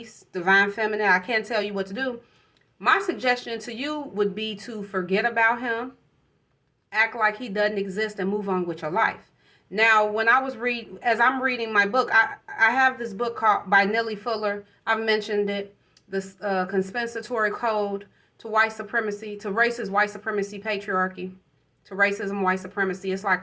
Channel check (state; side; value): identical; both; correlation 1.00